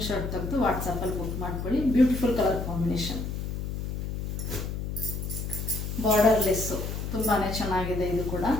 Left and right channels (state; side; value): noise; left; hum, 4 dB below the sound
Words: ತೆಗೆದು ವಾಟ್ಸಪ್ಪಲ್ಲಿ ಬುಕ್ ಮಾಡ್ಕೊಳ್ಳಿ. Beautiful colour combination. Border less ತುಂಬಾನೇ ಚೆನ್ನಾಗಿದೆ. ಇದು ಕೂಡ